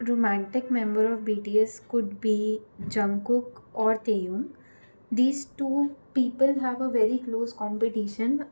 romantic member of BTS could be Jungkook or Taehyung. These two people have a very close competition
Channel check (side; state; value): both; inverted; correlation -1.00